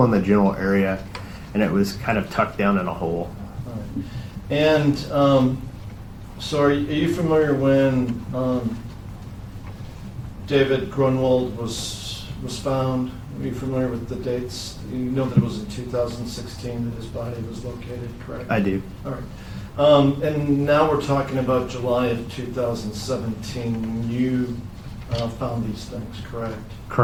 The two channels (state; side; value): identical; both; correlation 1.00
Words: in the general area, and it was kind of tucked down in a hole. All right. And so are you familiar when David Grunwald was found? Are you familiar with the dates? You know that it was in 2016 that his body was located, correct? I do. All right. And now we're talking about July of 2017 when you found these things, correct?